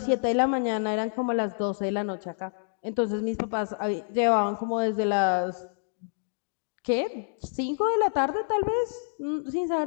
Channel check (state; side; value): silent; right; digital silence